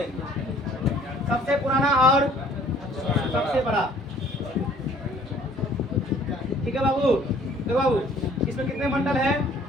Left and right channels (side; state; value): both; normal; correlation 0.56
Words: सबसे पुराना और सबसे बड़ा, ठीक है बाबू? देखो बाबू इसमें कितने मंडल है?